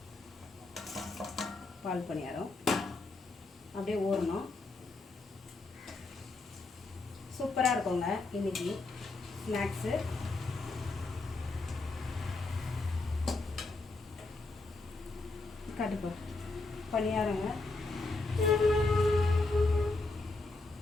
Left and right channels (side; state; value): right; quieter; 3.3 dB